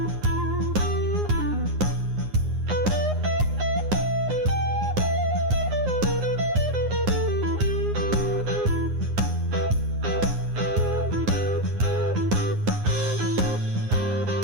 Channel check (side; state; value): left; late; 9.7 ms